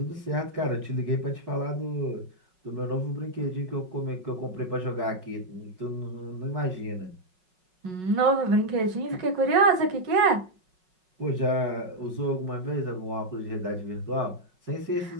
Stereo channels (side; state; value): left; late; 5.4 ms